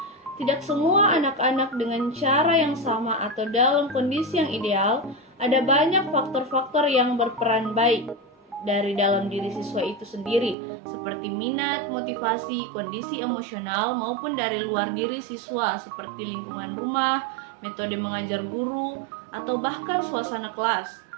Tidak semua anak-anak dengan cara yang sama atau dalam kondisi yang ideal, ada banyak faktor-faktor yang berperan baik dari dalam diri siswa itu sendiri, seperti minat, motivasi, kondisi emosional, maupun dari luar diri siswa, seperti lingkungan rumah, metode mengajar guru, atau bahkan suasana kelas.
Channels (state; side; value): drops out; left; at 10.6 s